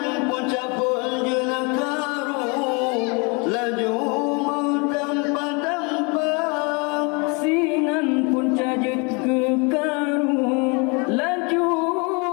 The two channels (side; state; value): right; quieter; 31.4 dB